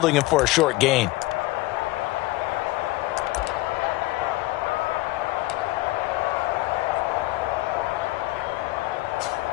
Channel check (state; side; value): quieter; right; 19.2 dB